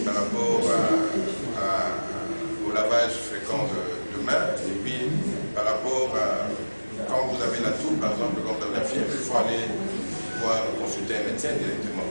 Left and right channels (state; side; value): inverted; both; correlation -1.00